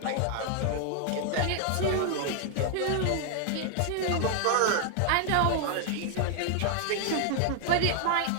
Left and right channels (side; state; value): both; different; correlation 0.00